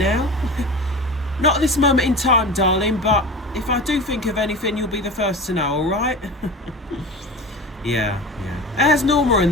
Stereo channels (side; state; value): both; normal; correlation 0.32